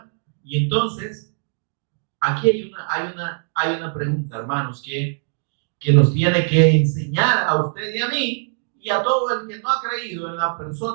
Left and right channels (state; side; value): silent; left; digital silence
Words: Y entonces, aquí hay una pregunta, hermanos, que nos tiene que enseñar a usted y a mí, y a todo el que no ha creído en la